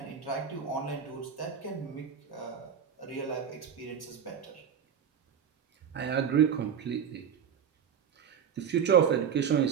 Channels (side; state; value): left; quieter; 7.8 dB